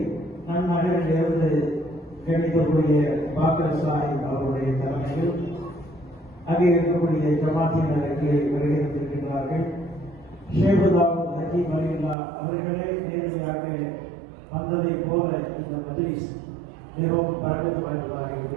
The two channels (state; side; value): drops out; left; at 12.2 s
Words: நன்னகரிலிருந்து கணிதக்கூடிய பாக்கர் சாஹிப் அவருடைய தலைமையில் அங்கே இருக்கக்கூடிய ஜமாத்தினருக்கு வருகின்றிருக்கின்றார்கள். ஷேகுதாவுத் ஹக்கீம் அலில்லா அவர்களே நேரடியாக வந்ததை போல இந்த மஜ்லிஸ் மிகவும் பரவல் வாய்ந்ததாக